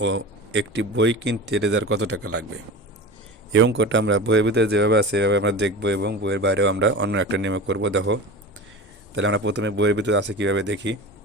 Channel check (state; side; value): normal; both; correlation 0.31